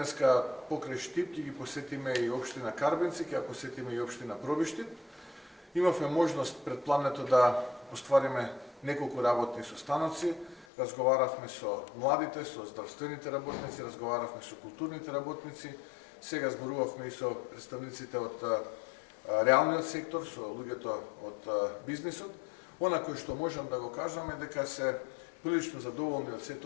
покрај Штип ќе ги посетиме и општина Карбенци, ќе ја посетиме и општина Пробиштип. Имавме можност пред плането да оствариме неколку работни состаноци. Разговаравме со младите, со здравствените работници, разговаравме со културните работници, сега зборувавме и со представниците од реалниот сектор, со луѓето од бизнисот. Она кој што можам да го кажам е дека се прилично задоволни од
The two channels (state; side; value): drops out; right; at 10.7 s